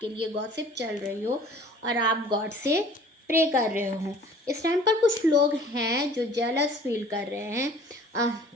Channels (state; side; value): normal; both; correlation 0.50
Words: लिए गॉसिप चल रही हो और आप गॉड से प्रे कर रहे हो। इस टाइम पर कुछ लोग हैं जो जेलस फील कर रहे हैं